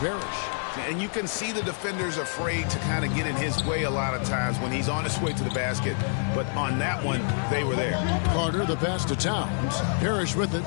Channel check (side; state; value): right; silent; 60 dB below the other